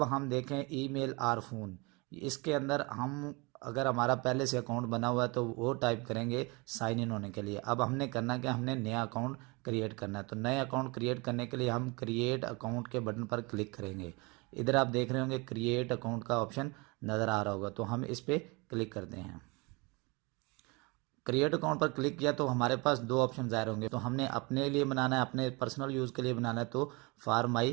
हम देखें ईमेल और फ़ोन, इसके अंदर हम अगर हमारा पहले से अकाउंट बना हुआ है तो वो टाइप करेंगे साइन इन होने के लिए। अब हमने करना है कि हमने नया अकाउंट क्रिएट करना है। तो नए अकाउंट क्रिएट करने के लिए हम क्रिएट अकाउंट के बटन पर क्लिक करेंगे। इधर आप देख रहे होंगे क्रिएट अकाउंट का ऑप्शन नज़र आ रहा होगा, तो हम इस पर क्लिक करते हैं। क्रिएट अकाउंट पर क्लिक किया तो हमारे पास दो ऑप्शन ज़ाहिर होंगे। तो हमने अपने लिए बनाना है, अपने पर्सनल यूज़ के लिए बनाना है, तो फॉर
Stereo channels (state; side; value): quieter; left; 27.5 dB